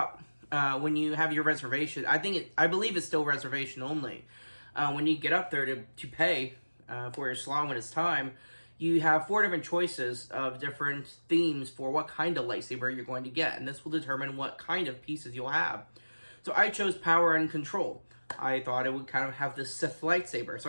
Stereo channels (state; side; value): inverted; both; correlation -1.00